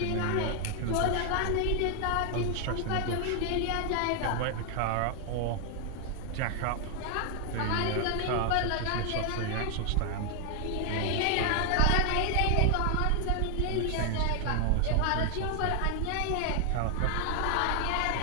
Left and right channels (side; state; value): both; different; correlation 0.00